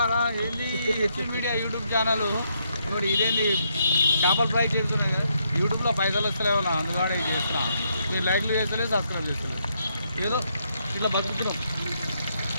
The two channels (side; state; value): both; inverted; correlation -0.76